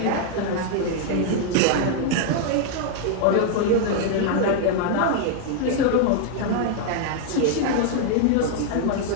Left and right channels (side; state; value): both; different; correlation 0.00